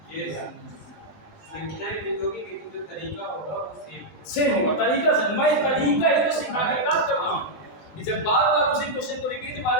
ये संख्याएं लिखोगी लेकिन जो तरीका होगा वो सेम होगा तरीका से। मैं तरीका ही तो सिखाने का काम कर रहा हूँ कि जब बार बार उसी क्वेश्चन को रिपीट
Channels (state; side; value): late; right; 19 ms